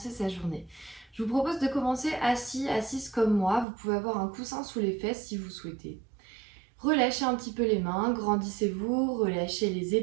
sa journée. Je vous propose de commencer assis, assise comme moi, vous pouvez avoir un coussin sous les fesses si vous souhaitez. Relâchez un petit peu les mains, grandissez-vous, relâchez les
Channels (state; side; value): drops out; left; at 3.7 s